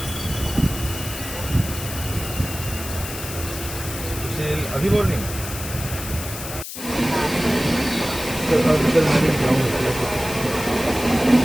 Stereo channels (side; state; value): left; noise; hiss, 9 dB below the sound